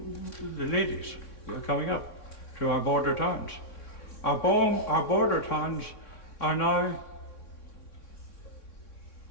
ladies are coming up to our border towns. Our border towns are now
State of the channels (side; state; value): right; late; 3.6 ms